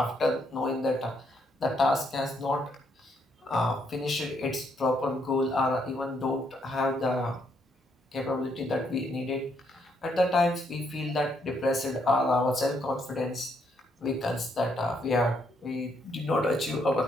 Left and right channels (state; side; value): normal; both; correlation 0.73